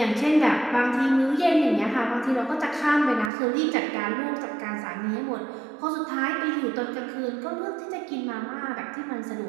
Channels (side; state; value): left; drops out; at 3.3 s